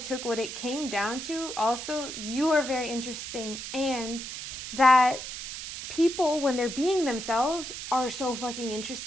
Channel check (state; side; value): noise; right; hiss, 8 dB below the sound